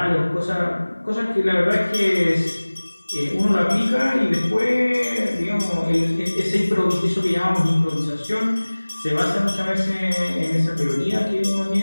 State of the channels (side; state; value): both; inverted; correlation -1.00